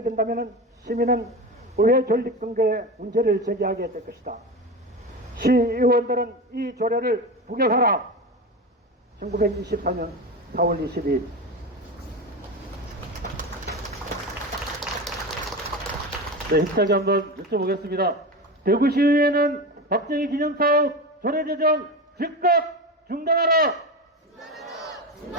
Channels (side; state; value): both; normal; correlation 0.23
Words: 시민은 의회 존립 근거에 문제를 제기하게 될 것이다. 시의원들은 이 조례를 부결하라. 1924년 4월 22일 네, 힘차게 한번 여쭤보겠습니다. 대구시의회는 박정희 기념사업 조례 제정 즉각 중단하라!